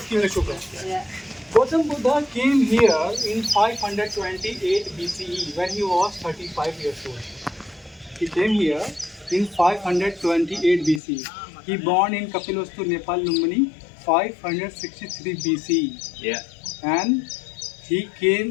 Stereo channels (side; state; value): right; drops out; at 11.0 s